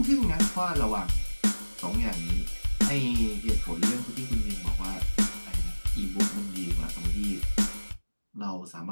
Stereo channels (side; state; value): both; inverted; correlation -1.00